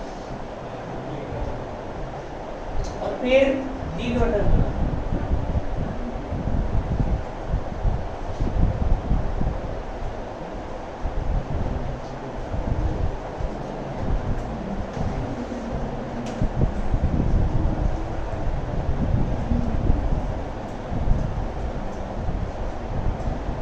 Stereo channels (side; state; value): both; identical; correlation 1.00